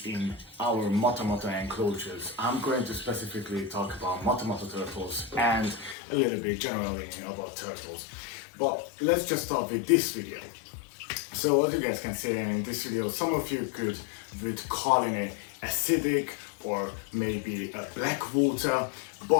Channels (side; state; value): right; drops out; at 6.0 s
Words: in our moto enclosures. I'm going to specifically talk about moto turtles and a little bit generally about turtles. But let's just start with this video. So as you guys can see in this video, some of you would call it acidic or maybe a black water,